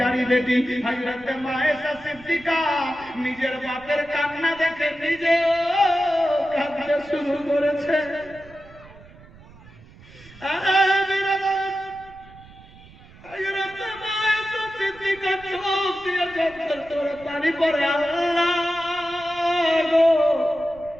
বেটি হযরত মা আয়েশা সিদ্দিকা নিজের বাপের কান্না দেখে নিজেও কাঁদতে শুরু করেছে। হযরত মা আয়েশা সিদ্দিকা চোখ দিয়ে ঝরঝর করে পানি পড়ে। আল্লাহ গো,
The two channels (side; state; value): right; noise; rumble, 22 dB below the sound